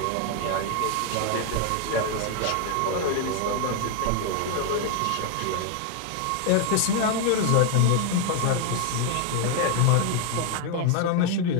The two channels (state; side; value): different; both; correlation 0.01